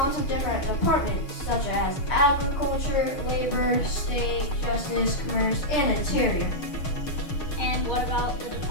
of different departments such as agriculture, labor, state, justice, commerce, and interior. And what about the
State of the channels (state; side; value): late; right; 6.4 ms